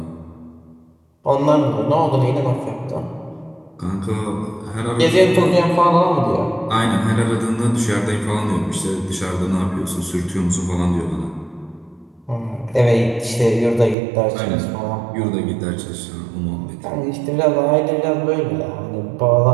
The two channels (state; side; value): drops out; left; at 14.0 s